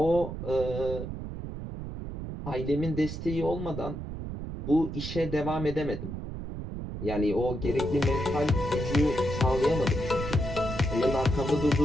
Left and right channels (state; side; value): noise; right; rumble, 7 dB below the sound